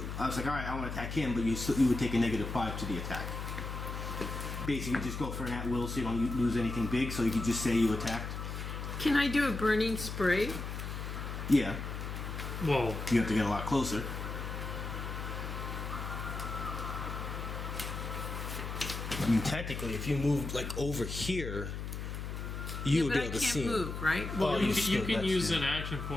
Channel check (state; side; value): noise; left; hum, 6 dB below the sound